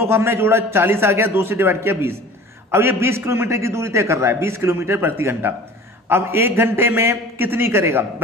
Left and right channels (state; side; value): normal; both; correlation 0.43